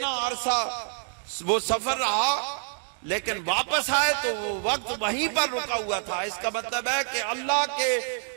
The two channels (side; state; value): left; silent; digital silence